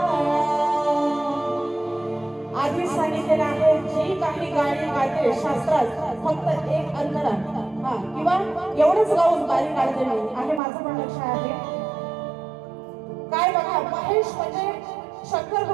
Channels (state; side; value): drops out; left; at 10.6 s